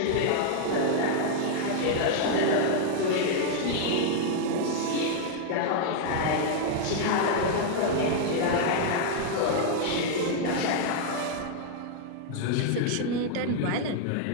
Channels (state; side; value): different; both; correlation -0.01